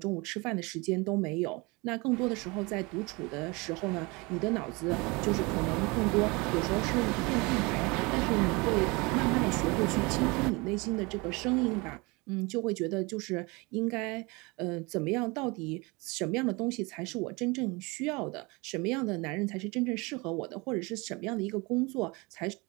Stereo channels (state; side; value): quieter; left; 26.3 dB